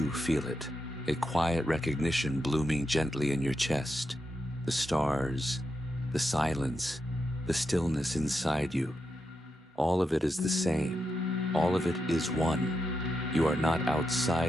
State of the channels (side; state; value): both; normal; correlation 0.86